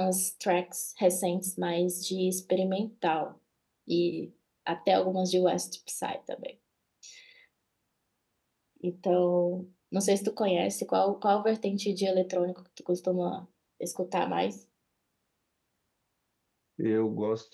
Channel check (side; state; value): both; identical; correlation 1.00